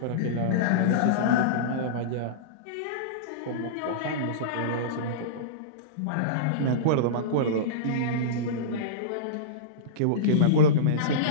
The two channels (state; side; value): different; both; correlation -0.05